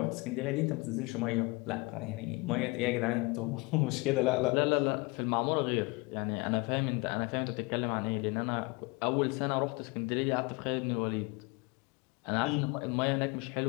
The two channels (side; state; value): right; quieter; 26.8 dB